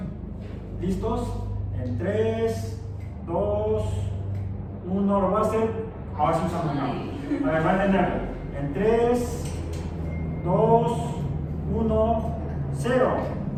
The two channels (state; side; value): identical; both; correlation 1.00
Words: ¿Listos? En 3, 2, 1, lo voy a hacer. Ahora sí usamos una. A ver, va a entenderlo. En 3, 2, 1, 0.